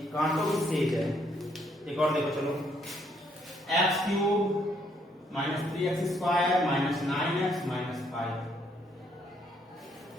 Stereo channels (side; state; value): both; normal; correlation 0.70